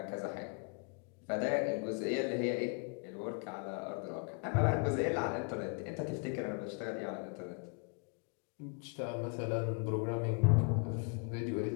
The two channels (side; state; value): right; quieter; 35.9 dB